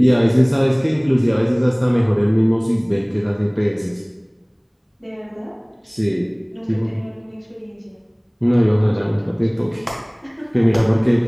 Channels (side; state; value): both; identical; correlation 1.00